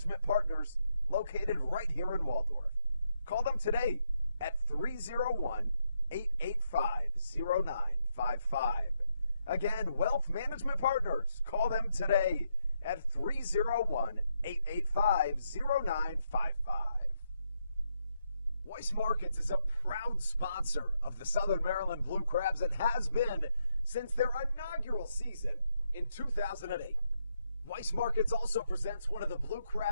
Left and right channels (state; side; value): inverted; both; correlation -0.79